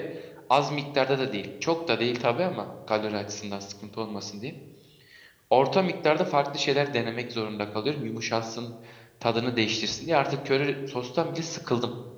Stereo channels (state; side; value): identical; both; correlation 1.00